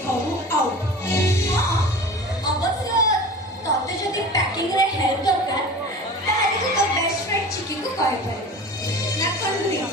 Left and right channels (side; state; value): both; normal; correlation 0.37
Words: ଘରୁ ଆଉ ଅବଶ୍ୟ ତତେ ଯଦି ପ୍ୟାକିଂରେ ହେଲ୍ପ ଦରକାର ତାହେଲେ ତୁ ତୋ ବେଷ୍ଟ ଫ୍ରେଣ୍ଡ ଚିକିକୁ କହିପାରିବୁ ନା କଣ?